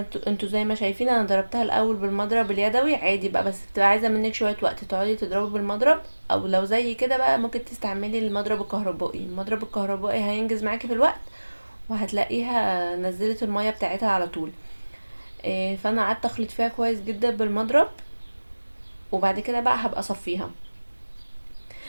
انتوا زي ما شايفين انا ضربتها الاول بالمضرب اليدوي عادي بقى، بس بتبقى عايزه منك شويه وقت تقعدي تضربي بالمضرب. او لو زي كده بقى ممكن تستعملي المضرب الكهربائي. المضرب الكهربائي هينجز معاكي في الوقت، وهتلاقيها نزلت المية بتاعتها على طول. فانا قعدت اخلط فيها كويس جدا بالمضرب، وبعد كده بقى هبقى اصفيها.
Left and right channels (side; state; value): both; inverted; correlation -1.00